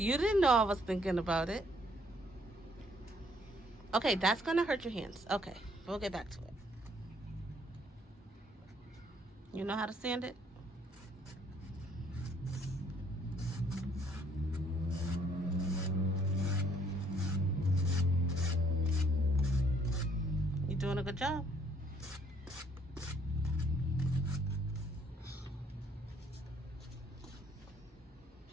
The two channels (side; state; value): both; normal; correlation 0.65